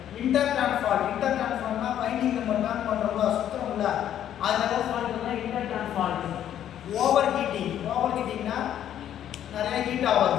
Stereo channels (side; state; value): right; quieter; 10.7 dB